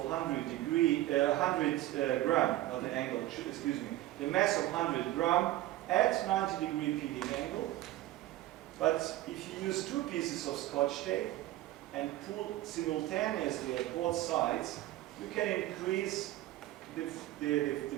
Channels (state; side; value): quieter; left; 15.5 dB